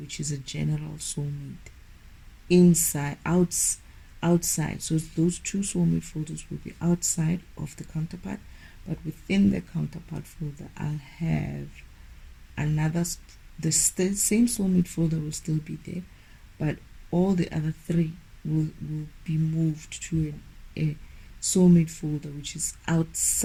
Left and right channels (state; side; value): identical; both; correlation 1.00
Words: which is a general soulmate outside. So those two soulmate folders will be outside of the counterpart, but within the counterpart folder, I'll have another. The same soulmate folder will still be there, but all the other three will be moved to a soulmate folder, which is